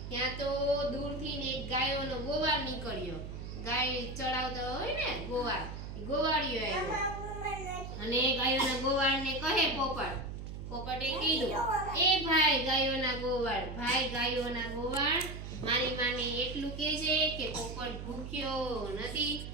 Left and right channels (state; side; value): noise; right; hum, 8 dB below the sound